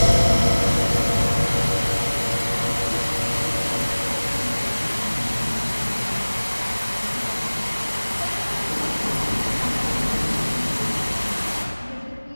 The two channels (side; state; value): both; inverted; correlation -1.00